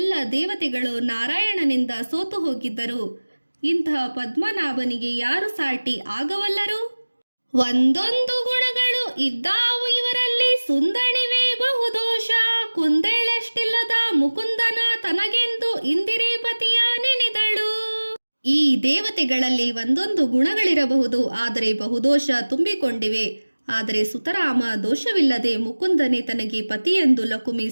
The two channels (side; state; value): both; inverted; correlation -1.00